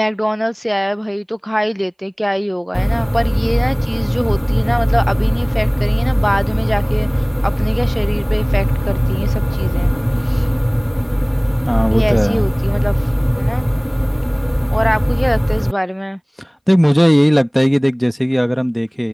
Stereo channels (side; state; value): both; identical; correlation 1.00